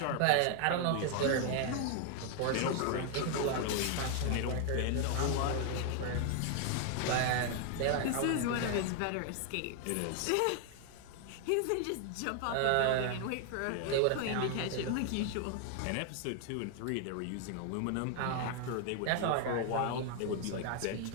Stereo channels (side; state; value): both; different; correlation 0.00